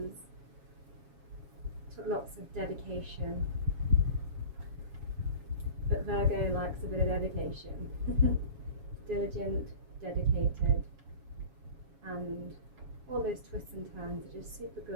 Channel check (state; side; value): late; left; 7.2 ms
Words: Took lots of dedication. But Virgo likes a bit of dedication. Diligent, dedicated, and all those twists and turns are just super